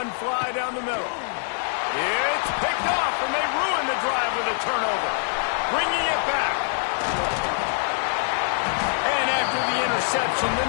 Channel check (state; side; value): silent; right; digital silence